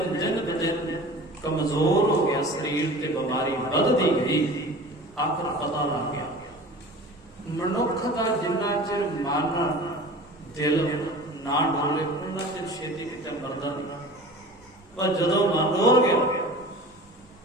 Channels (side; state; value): both; normal; correlation 0.39